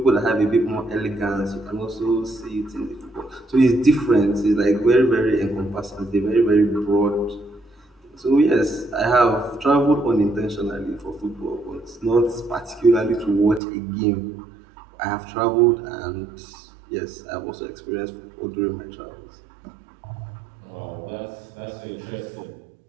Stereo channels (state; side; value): drops out; left; at 13.6 s